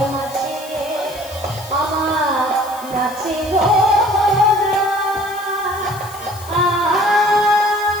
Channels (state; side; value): noise; left; hiss, 17 dB below the sound